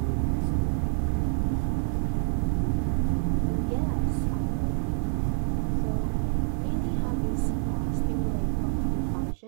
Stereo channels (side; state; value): left; silent; 55 dB below the other